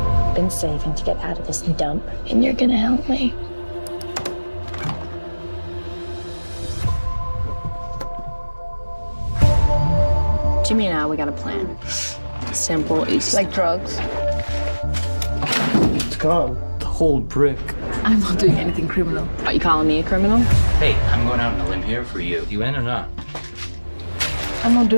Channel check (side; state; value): both; inverted; correlation -1.00